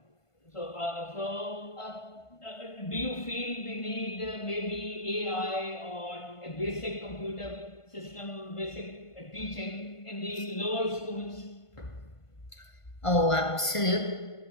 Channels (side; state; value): right; late; 1.5 ms